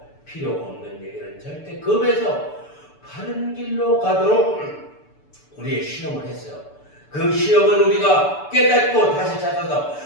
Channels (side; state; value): right; late; 6.9 ms